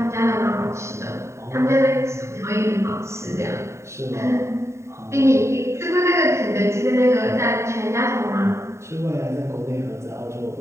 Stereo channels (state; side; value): late; left; 0.14 ms